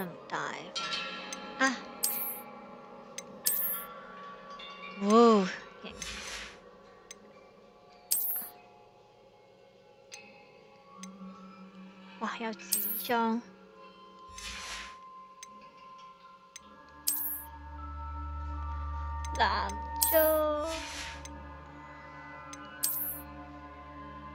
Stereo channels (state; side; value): identical; both; correlation 1.00